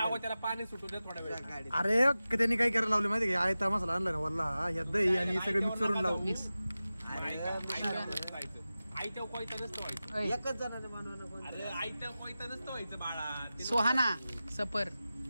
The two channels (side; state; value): both; inverted; correlation -0.95